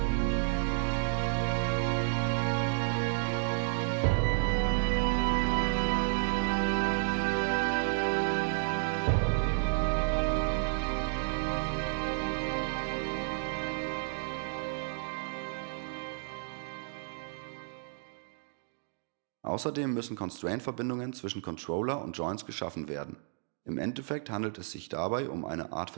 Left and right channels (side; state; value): left; silent; 57 dB below the other